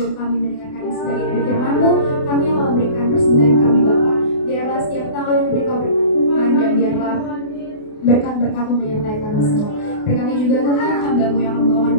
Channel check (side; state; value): right; late; 28 ms